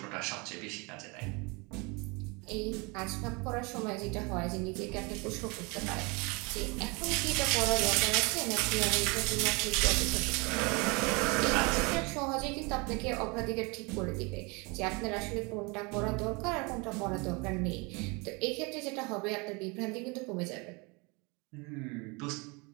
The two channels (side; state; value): left; quieter; 28.5 dB